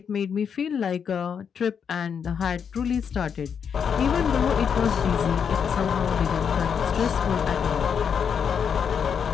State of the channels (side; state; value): right; quieter; 7.1 dB